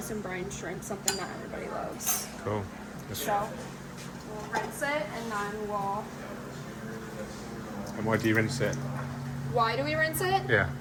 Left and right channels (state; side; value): identical; both; correlation 1.00